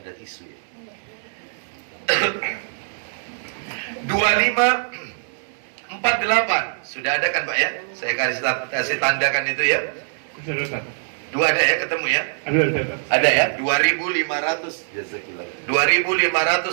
tisu ya. 2548. Sudah ada kan Pak ya? Saya kasih tandakan itu ya. Sudah. Dua ada ya, ketemu ya? Ada ya?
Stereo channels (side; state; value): left; silent; 64 dB below the other